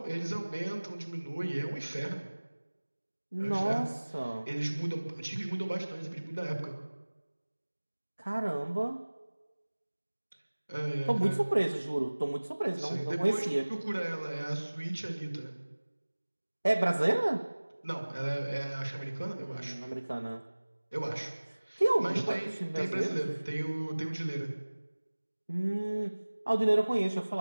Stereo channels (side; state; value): both; inverted; correlation -1.00